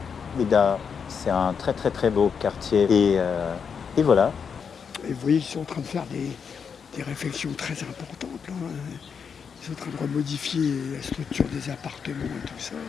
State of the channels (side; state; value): right; quieter; 6.5 dB